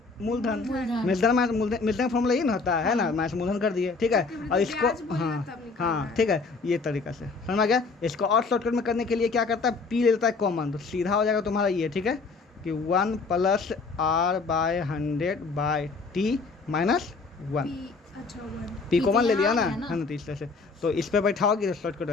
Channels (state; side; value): quieter; right; 4.2 dB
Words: मूलधन, मूलधन। मिश्रधन माइनस मिश्रधन का फॉर्मूला ये ना होता है ना, माइनस मूलधन कर दिए, ठीक है। और इसको ब्याज बोलना हाँ तब निकालना हाँ है। ठीक है, ये तरीका से समझ में आ गया। इसको और शॉर्टकट में करने के लिए क्या करता है, पी ले लेता है कॉमन, तो सीधा हो जाएगा तुम्हारा ये, ठीक है, कि 1 + R/100/T - 1। अच्छा 1 पी कॉमन ले यहाँ लिया आ ना, गया ना। है ना, तो इस तरह से तो इस पे बैठाओगे तो शॉर्टकट